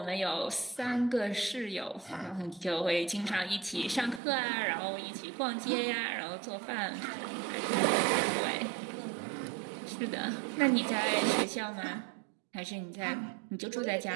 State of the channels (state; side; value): drops out; left; at 4.2 s